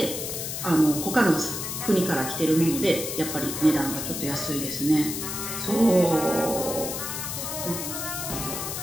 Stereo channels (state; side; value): noise; left; hiss, 5 dB below the sound